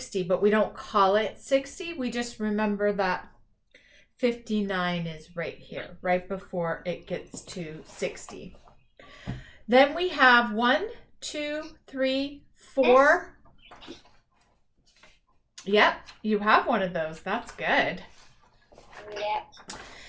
but we don't call it 60. We just remember that 59 is right here, right before it gets to 60. Then we have 1, 2, 3, 4. Yep, you have one of those. That's good. Yep.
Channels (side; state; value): both; identical; correlation 1.00